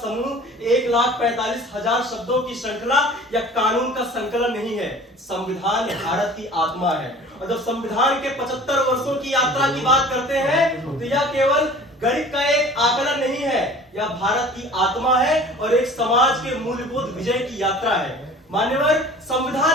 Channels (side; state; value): both; normal; correlation 0.45